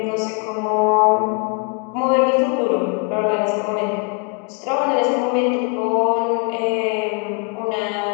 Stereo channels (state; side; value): quieter; right; 35.1 dB